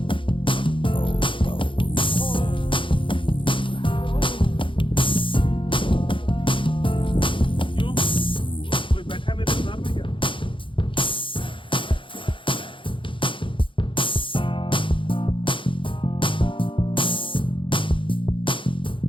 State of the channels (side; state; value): right; late; 0.25 ms